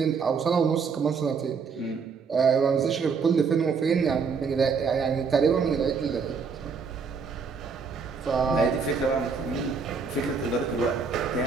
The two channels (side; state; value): left; quieter; 5.4 dB